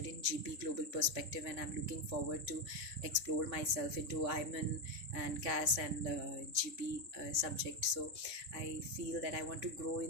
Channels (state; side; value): late; left; 3.6 ms